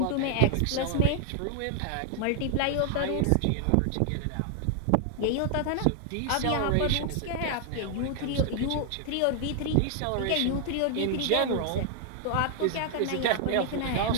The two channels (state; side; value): different; both; correlation 0.00